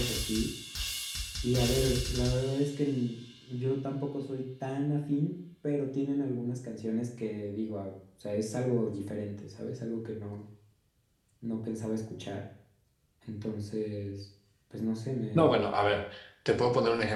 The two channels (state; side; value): identical; both; correlation 1.00